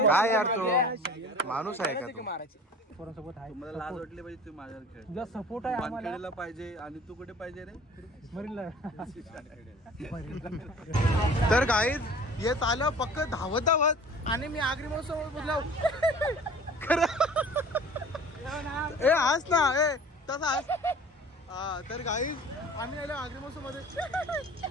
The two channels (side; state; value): both; normal; correlation 0.45